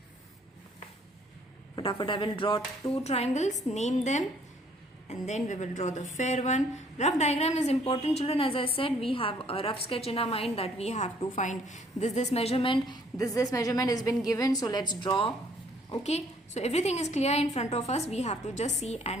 I will draw two triangles, name them, and then we will draw the fair one. Rough diagram is important, children. As I said, we have a rough sketch in our mind that we have to find this measurement. This measurement has been given, so let's draw. Okay, so everything is clear in front of us. We have to just see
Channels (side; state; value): both; normal; correlation 0.62